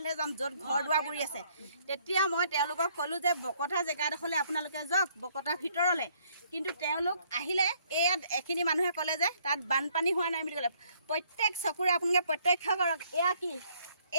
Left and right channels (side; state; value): both; inverted; correlation -0.66